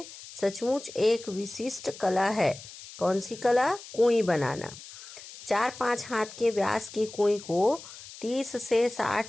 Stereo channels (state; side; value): noise; left; hiss, 16 dB below the sound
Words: सचमुच एक विशिष्ट कला है। कौन सी कला? कुएं बनाना। 4-5 हाथ के व्यास की कुएं को 30 से